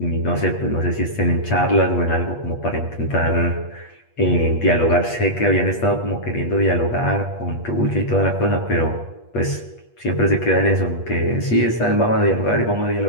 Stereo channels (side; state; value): right; late; 8.4 ms